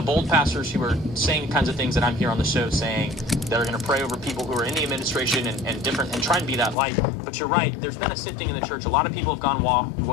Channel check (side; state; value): right; drops out; at 6.8 s